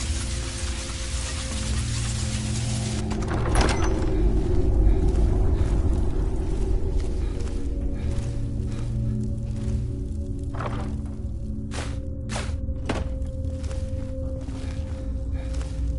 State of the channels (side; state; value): both; identical; correlation 1.00